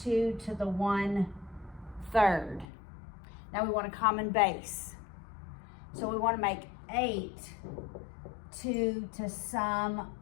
to the 1/3. Now we want a common base. So we want to make 8 2 to some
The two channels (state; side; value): drops out; right; at 2.7 s